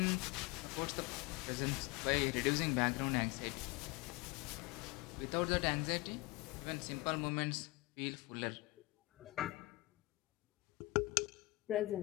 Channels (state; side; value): quieter; right; 22.1 dB